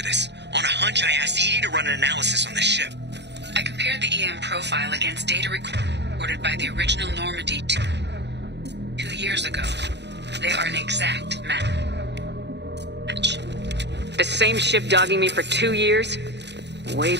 this. On a hunch, I asked Edie to run an analysis on the ship. I compared the EM profile against data recorded by the original Normandy 2 years ago. They are an exact match. The same ship dogging me for 2 years? Way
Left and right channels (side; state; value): left; late; 0.50 ms